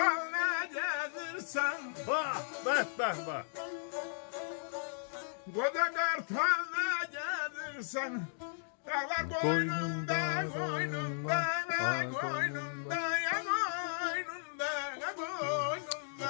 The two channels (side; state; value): right; silent; digital silence